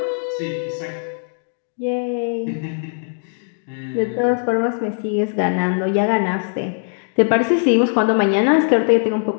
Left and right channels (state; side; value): silent; right; digital silence